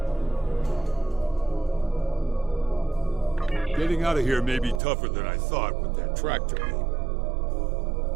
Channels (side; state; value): left; drops out; at 4.8 s